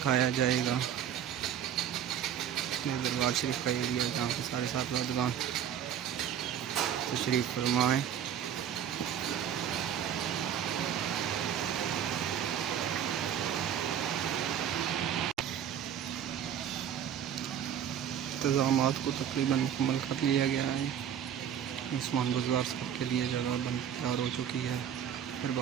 जाएगा दरबार शरीफ का एरिया, जहाँ पे सारे साहबजादगान तशरीफ़ फरमाएँ। इंतज़ामात को तकरीबन मुकम्मल कर लिया गया है। उस्मान बुज़दार साहब के लिए जगह तैयार हो चुकी है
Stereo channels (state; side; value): quieter; left; 9.3 dB